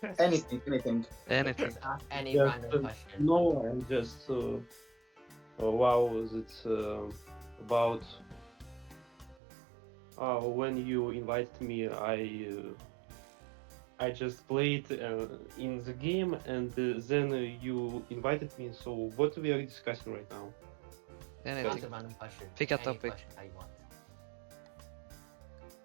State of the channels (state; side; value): drops out; left; at 9.4 s